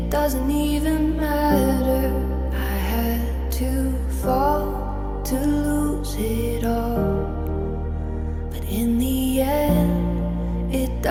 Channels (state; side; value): identical; both; correlation 1.00